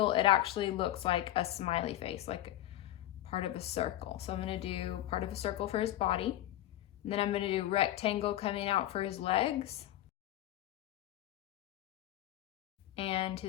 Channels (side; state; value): right; quieter; 14.2 dB